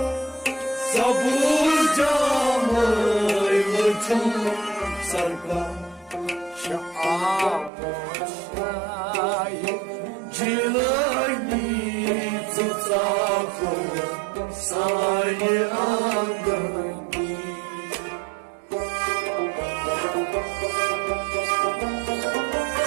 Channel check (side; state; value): left; drops out; at 7.7 s